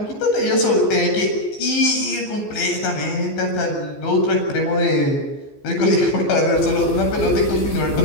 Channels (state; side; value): late; right; 14 ms